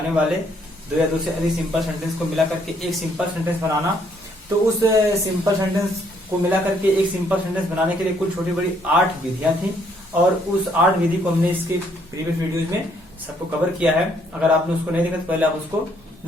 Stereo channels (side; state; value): both; normal; correlation 0.68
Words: वाले दो या दो से अधिक सिंपल सेंटेंस को मिला करके एक सिंपल सेंटेंस बनाना। तो उस सिंपल सेंटेंस को मिला करके एक सिंपल सेंटेंस बनाने के लिए कुल छोटी बड़ी 8 विधियां थी और उस 8 विधि को हमने इसके प्रीवियस वीडियोज में सबको कवर किया है। अगर आपने उसको नहीं देखा तो पहले आप उसको